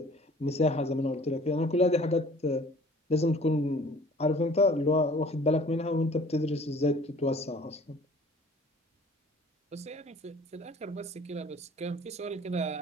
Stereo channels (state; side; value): normal; both; correlation 0.51